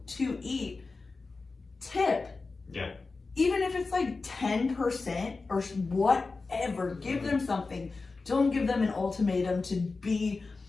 to eat, tip. Yeah. Even if it's like 10% or whatever, give them something. Don't give them an ultimatum to be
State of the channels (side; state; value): right; quieter; 4.0 dB